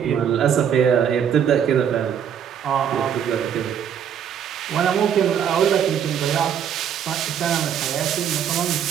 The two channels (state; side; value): quieter; left; 8.6 dB